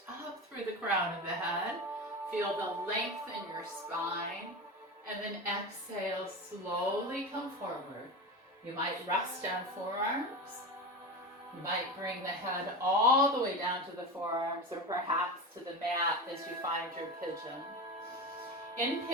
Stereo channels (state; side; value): normal; both; correlation 0.24